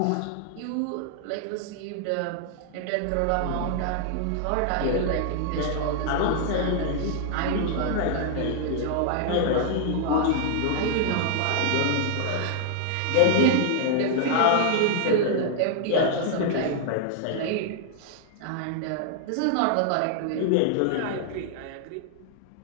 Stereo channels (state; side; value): different; both; correlation 0.00